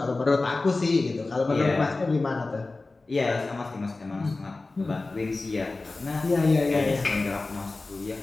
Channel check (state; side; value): quieter; right; 3.4 dB